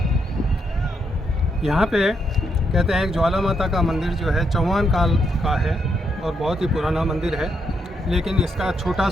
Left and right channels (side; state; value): both; normal; correlation 0.78